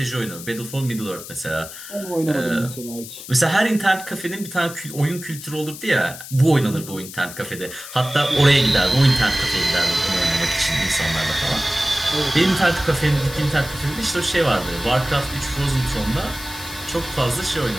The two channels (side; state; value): left; noise; hiss, 13 dB below the sound